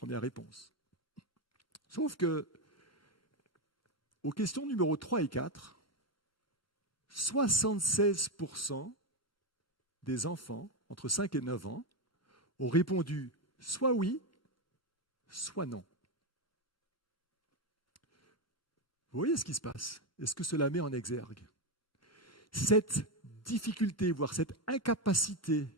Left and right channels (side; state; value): both; normal; correlation 0.10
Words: réponses. Sauf que, aux questions numéro 3 et 4, 76% des enfants entre 5 et 9 ans ont répondu soit oui, soit non. Vous voyez ce qui se passe? Est-ce que cela met en exergue cette difficulté, voire cette incapacité